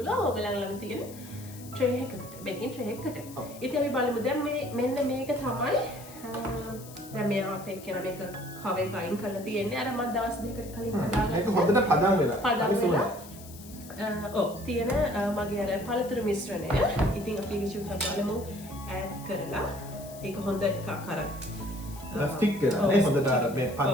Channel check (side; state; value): left; noise; hiss, 18 dB below the sound